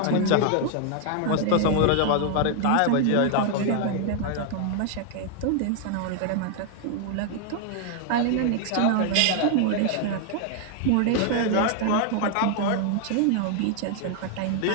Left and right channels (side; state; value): both; different; correlation 0.00